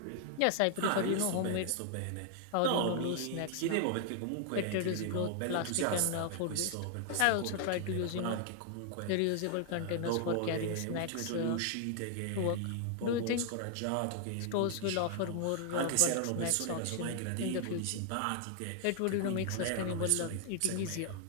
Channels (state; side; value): different; both; correlation 0.00